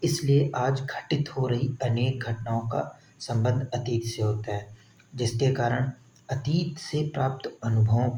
इसलिए आज घटित हो रही अनेक घटनाओं का संबंध अतीत से होता है, जिसके कारण अतीत से प्राप्त अनुभवों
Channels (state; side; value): identical; both; correlation 1.00